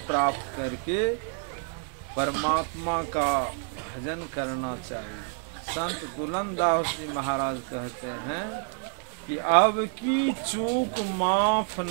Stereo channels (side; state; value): left; silent; 56 dB below the other